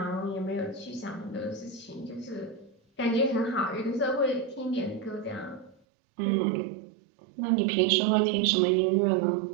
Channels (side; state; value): left; drops out; at 5.8 s